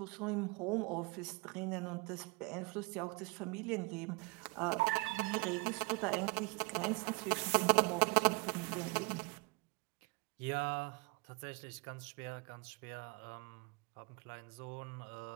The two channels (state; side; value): quieter; left; 27.3 dB